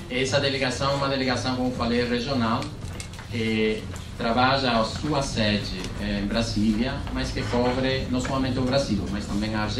Essa delegação é uma delegação, como falei, regional, que trabalha a sua sede em Brasília, mas que cobre não somente o Brasil, mas também a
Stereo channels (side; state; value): both; identical; correlation 1.00